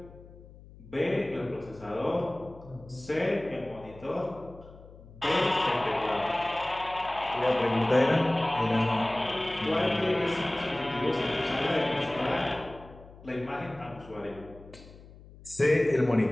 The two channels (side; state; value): left; noise; hum, 20 dB below the sound